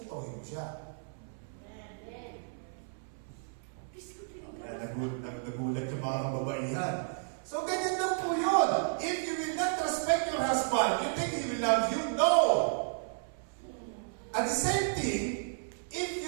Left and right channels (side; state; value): left; silent; 56 dB below the other